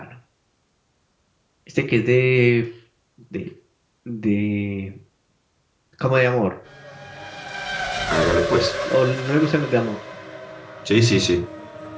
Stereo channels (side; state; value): both; identical; correlation 1.00